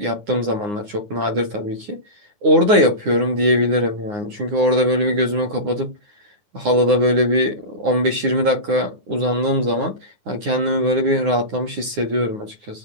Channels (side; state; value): left; late; 9.7 ms